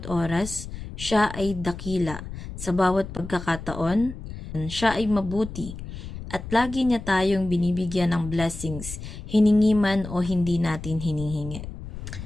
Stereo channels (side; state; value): left; noise; rumble, 10 dB below the sound